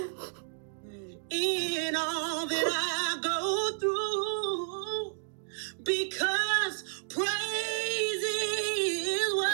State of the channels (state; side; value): silent; left; digital silence